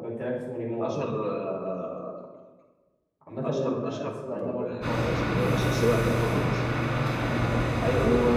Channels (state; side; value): identical; both; correlation 1.00